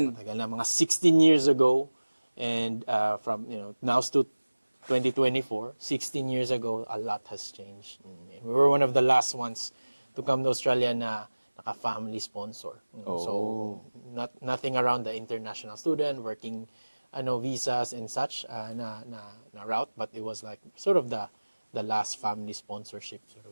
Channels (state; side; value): inverted; both; correlation -1.00